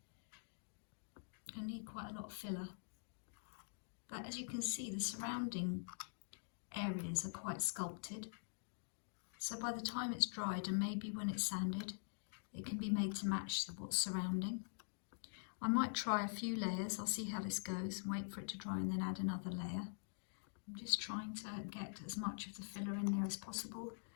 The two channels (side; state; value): right; silent; digital silence